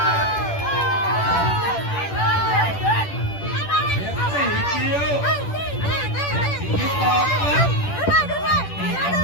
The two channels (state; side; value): late; right; 10 ms